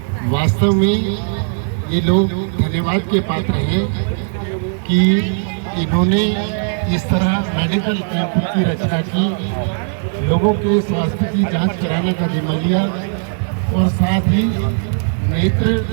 वास्तव में ये लोग धन्यवाद के पात्र हैं कि इन्होंने इस तरह मेडिकल कैंप की रचना की, लोगों के स्वास्थ्य की जांच कराने का जिम्मा लिया और साथ ही नेत्र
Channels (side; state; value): left; silent; 63 dB below the other